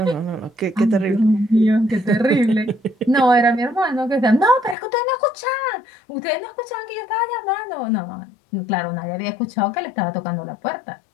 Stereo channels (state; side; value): drops out; right; at 4.8 s